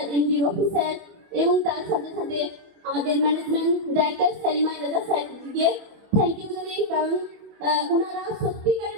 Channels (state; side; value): late; left; 24 ms